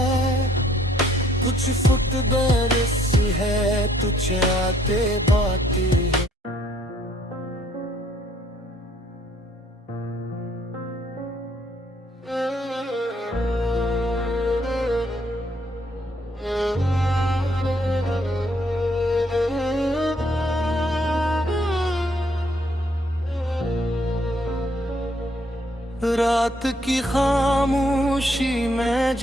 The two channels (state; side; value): normal; both; correlation 0.67